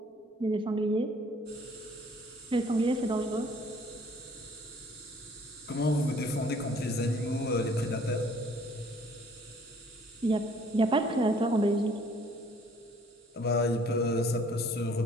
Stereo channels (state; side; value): normal; both; correlation 0.58